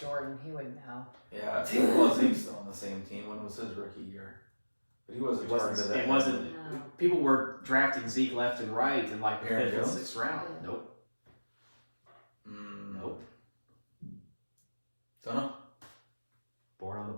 He would know. Yeah, was he still on the same team? When was his rookie year? But he wasn't targeted that. It wasn't. No. People were drafting Zeke left and right in like the Aaron 5th and Jones? 6th round. Yeah. Nope. Nope. Don't know. Born on the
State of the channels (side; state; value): both; inverted; correlation -1.00